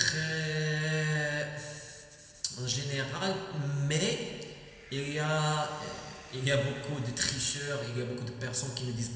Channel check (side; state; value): both; identical; correlation 1.00